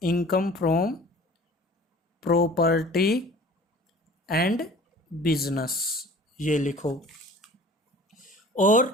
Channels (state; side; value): normal; both; correlation 0.46